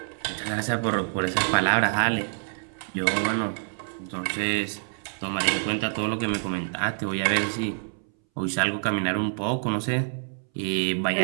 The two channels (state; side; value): silent; left; 60 dB below the other